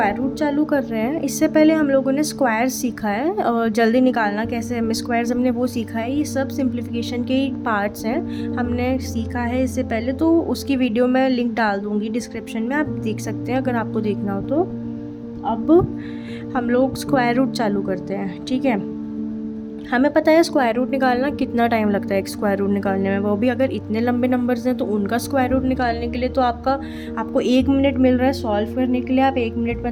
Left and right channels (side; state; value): both; identical; correlation 1.00